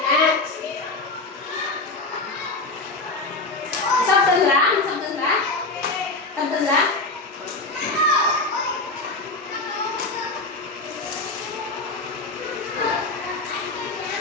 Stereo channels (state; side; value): quieter; right; 3.2 dB